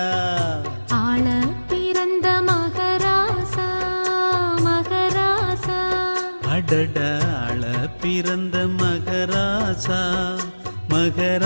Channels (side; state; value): both; inverted; correlation -1.00